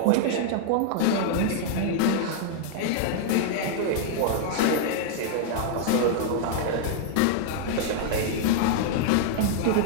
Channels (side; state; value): both; different; correlation -0.01